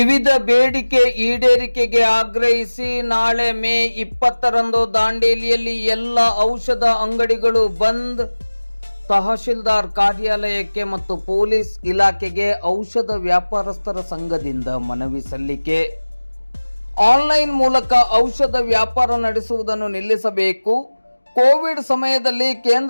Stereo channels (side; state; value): both; inverted; correlation -1.00